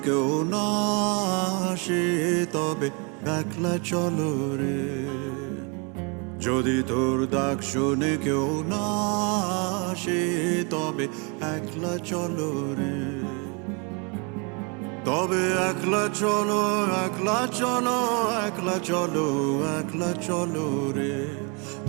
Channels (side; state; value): left; quieter; 33.9 dB